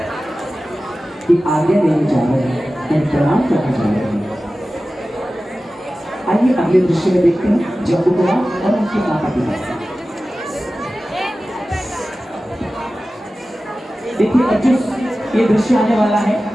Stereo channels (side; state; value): both; normal; correlation 0.95